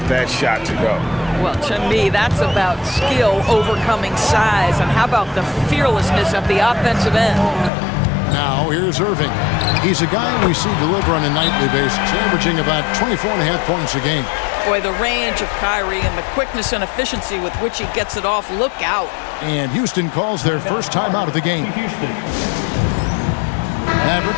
that shot to go. Well, to me, that's about skill overcoming size. And how about the fearlessness at the offensive end? Now, here's Irving. He's a guy we see deliver on a nightly basis, averaging about 24.5 points a game. Boy, the range of Kyrie and the quickness and efficiency with which he gets it off, look out. And Houston calls their first time out of the game.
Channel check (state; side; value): drops out; right; at 7.7 s